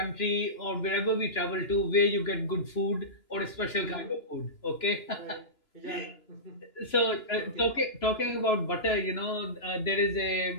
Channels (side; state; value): right; late; 3.0 ms